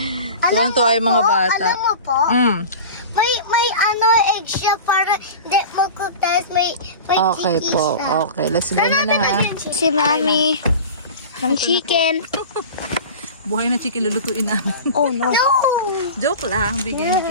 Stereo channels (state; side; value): inverted; both; correlation -0.34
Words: Tuwang-tuwa yung mga bata. Alam mo po, may ano egg siya para hindi magkutas. May Okay chicken po. siya. Okay, let's go na ha. Si Mami. Ng chicken. Buhay na chicken lulutuin namin. Oh no. Joke lang. Bigyan ni